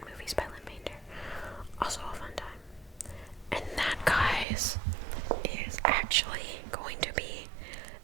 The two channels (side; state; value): left; drops out; at 4.5 s